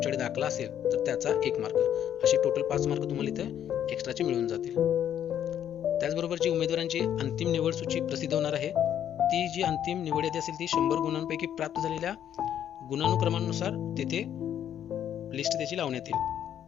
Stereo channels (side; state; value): right; quieter; 10.0 dB